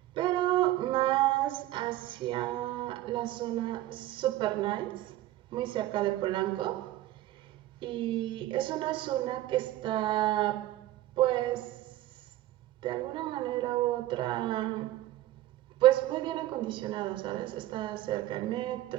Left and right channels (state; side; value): quieter; left; 15.1 dB